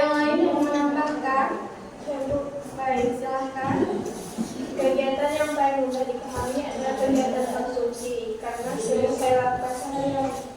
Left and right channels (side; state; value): both; identical; correlation 1.00